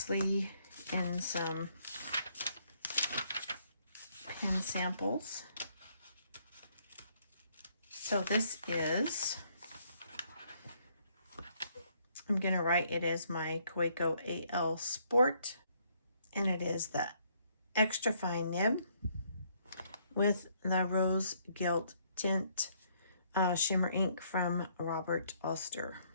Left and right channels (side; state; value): both; inverted; correlation -0.69